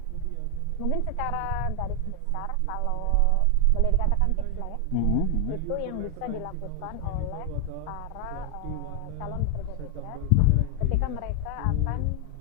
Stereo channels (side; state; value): both; different; correlation 0.00